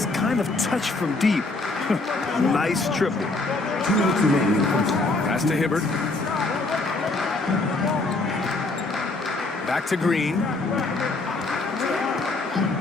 kind of touch from deep. Nice triple. Pass to Hibbert. Back to Green.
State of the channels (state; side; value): quieter; right; 3.2 dB